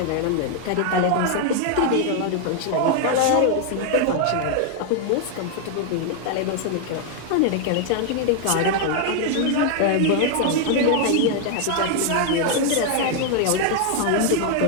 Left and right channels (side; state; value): both; different; correlation 0.00